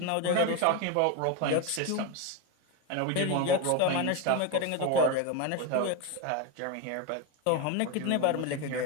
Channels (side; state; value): both; different; correlation 0.03